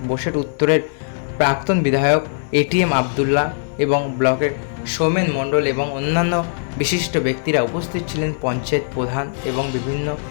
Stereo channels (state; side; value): silent; right; 66 dB below the other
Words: বোসেট উত্তরের প্রাক্তন বিধায়ক এটিএম আবদুল্লাহ এবং ব্লকের সৌমেন মণ্ডল এবং অন্যান্য বিশিষ্ট ব্যক্তিরা উপস্থিত ছিলেন, পঞ্চায়েত প্রধান এবং বিভিন্ন